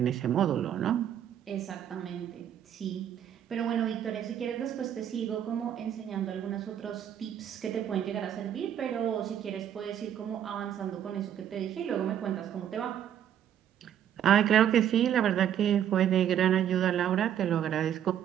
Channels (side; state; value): left; quieter; 10.0 dB